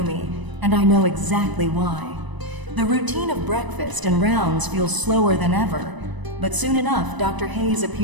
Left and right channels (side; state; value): left; late; 1.0 ms